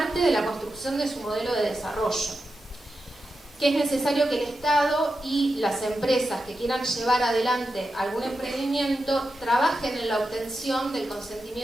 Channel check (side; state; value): both; normal; correlation 0.89